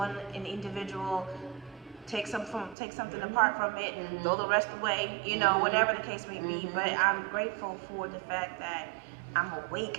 an individual. Take something apart from it, throw the rest away, you know, whatever the case may be. But I'm grateful for the fact that I'm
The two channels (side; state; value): left; drops out; at 2.8 s